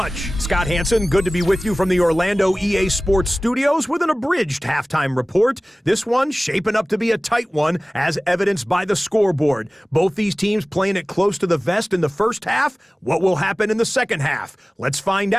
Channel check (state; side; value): normal; both; correlation 0.98